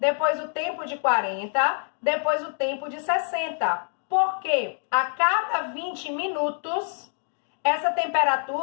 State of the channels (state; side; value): silent; right; 61 dB below the other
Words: o tempo de 40, depois o tempo de 60. Porque a cada 20 minutos, essa